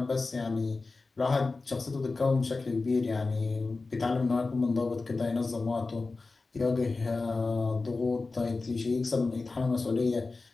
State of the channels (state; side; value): quieter; right; 3.8 dB